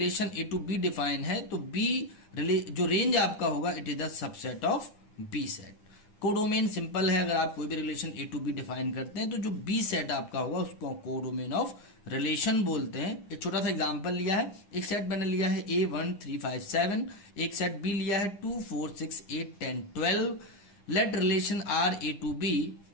A to B define है, तो बी जो रेंज आपका होगा it is the subset of B set. Codomain simple है, अगर आप कोई भी relation A to B define करते हैं, तो जो बी सेट आपका होगा उसको कोडोमेन ऑफ रिलेशन बोलते हैं। एक छोटा सा एग्जांपल लिया है, एक सेट मैंने लिया है A1 3 5 7, एक सेट बी लिया है 2 4 6 8 10 12। Let relation R A to B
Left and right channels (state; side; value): late; right; 9.9 ms